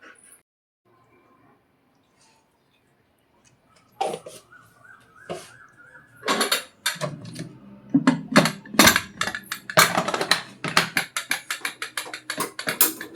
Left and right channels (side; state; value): both; identical; correlation 1.00